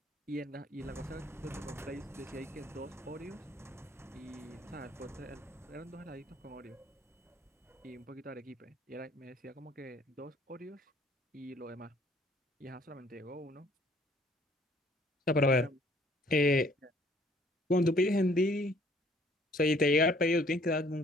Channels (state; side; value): normal; both; correlation 0.60